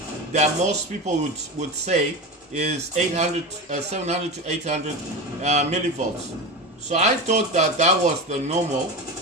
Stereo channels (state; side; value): normal; both; correlation 0.24